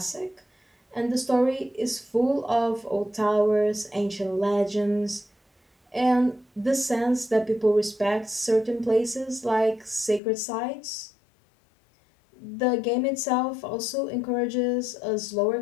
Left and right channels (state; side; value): drops out; right; at 10.2 s